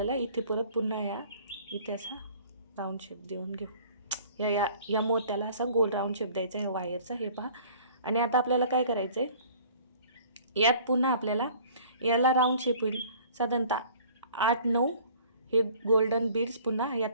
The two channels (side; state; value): both; inverted; correlation -0.51